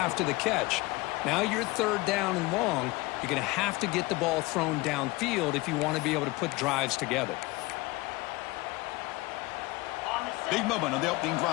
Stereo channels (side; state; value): right; quieter; 21.9 dB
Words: the catch. Now you're third down and long. You're going to have to get the ball thrown downfield if you want to be able to put drives together. Big moment on the opening